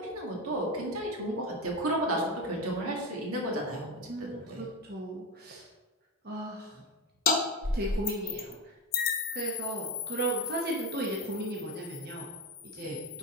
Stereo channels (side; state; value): both; normal; correlation 0.19